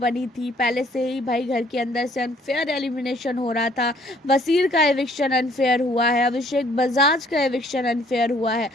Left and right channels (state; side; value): normal; both; correlation 0.61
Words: थी, पहले से ही भाई घर के अंदर से अनफेयर एलिमिनेशन हो रहा था। वसीर का एविक्शन अनफेयर हुआ है, अभिषेक बजाज का एविक्शन अनफेयर हुआ है,